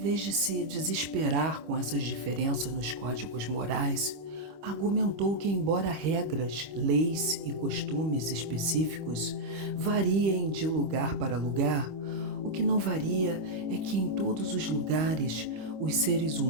de se desesperar com essas diferenças nos códigos morais, argumentou que, embora regras, leis e costumes específicos variem de lugar para lugar, o que não varia é que em todos os lugares os seres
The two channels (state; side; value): late; left; 25 ms